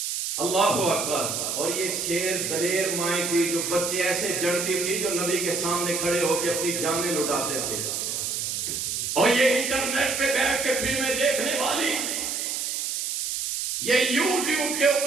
اللہ اکبر، اور یہ شیر دلیر مائیں تھی جو بچے ایسے جڑتی تھی جو نبی کے سامنے کھڑے ہو کے اپنی جانیں لٹاتے تھے، اور یہ انٹرنیٹ پہ بیٹھ کے فلمیں دیکھنے والی، یہ یوٹیوب کے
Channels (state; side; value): noise; right; hiss, 2 dB below the sound